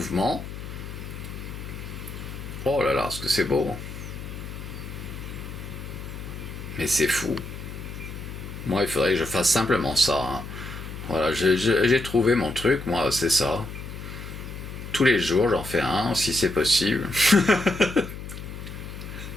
Oh là là, ce que c'est beau. Mais c'est fou. Moi, il faudrait que je fasse simplement ça. Hein. Voilà, j'ai trouvé mon truc, moi, c'est ça. Tous les jours, j'en fais un, si c'est possible.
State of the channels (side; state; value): left; noise; hum, 10 dB below the sound